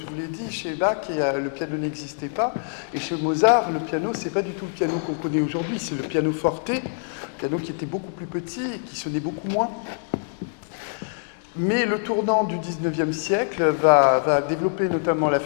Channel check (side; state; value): right; silent; digital silence